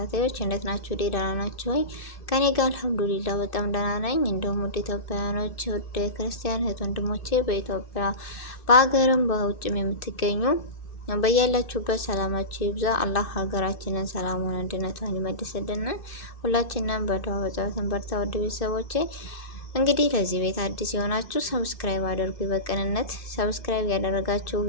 እንዴት ናችሁ? ደህና ናችሁ ወይ? ከኔ ጋር አልሐምዱሊላህ በጣም ደህና ነኝ። እንደውም ወደ ኢትዮጵያውያኖች ወደ ክርስቲያን እህት ወንድሞቼ በኢትዮጵያ በሀገርም በውጭም የምትገኙ በያላችሁበት ሰላማችሁ ይብዛ። አላህ ሀገራችንን ሰላሙን አንድነቷን ይመልስልን። ሁላችንም በዱዓ በጸሎት በርታ። ወደ ቤተሰቦቼ እንግዲህ ለዚህ ቤት አዲስ የሆናችሁ ሰብስክራይብ አድርጉ። በቅንነት ሰብስክራይብ ያደረጋችሁ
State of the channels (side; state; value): right; late; 2.6 ms